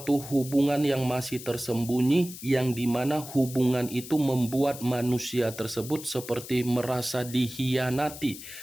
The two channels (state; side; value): noise; left; hiss, 13 dB below the sound